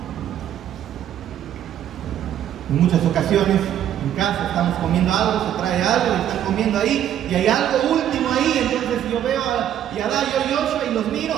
En muchas ocasiones, en casa estamos comiendo algo, se trae algo, y están comiendo ahí, y hay algo último ahí, entonces yo veo a Yadá, yo y Joshua, y los miro,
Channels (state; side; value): quieter; left; 10.7 dB